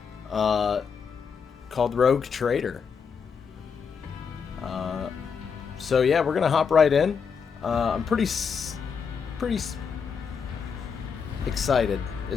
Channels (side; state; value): right; quieter; 6.3 dB